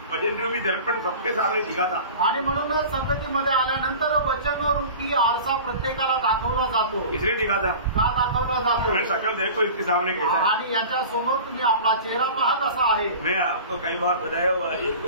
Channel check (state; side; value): inverted; both; correlation -0.38